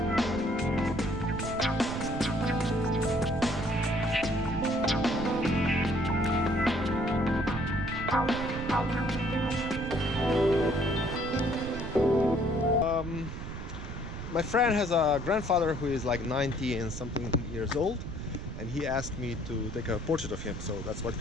My friend has a grandfather who is like 90 and something years old, and he asked me to take a portrait of him, so that's what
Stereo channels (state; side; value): noise; right; rumble, 8 dB below the sound